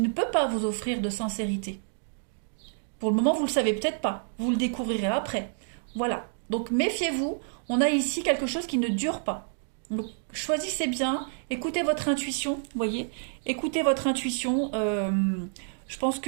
peut pas vous offrir de sincérité. Pour le moment, vous ne le savez peut-être pas. Vous le découvrirez après. Voilà. Donc méfiez-vous. On a ici quelque chose qui ne dure pas. Donc choisissez bien. Écoutez votre intuition. Vous voyez. Écoutez votre intuition. Je pense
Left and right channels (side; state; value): left; silent; digital silence